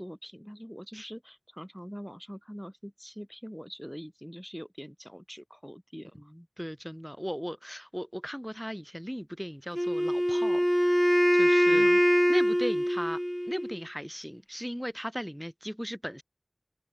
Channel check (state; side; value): identical; both; correlation 1.00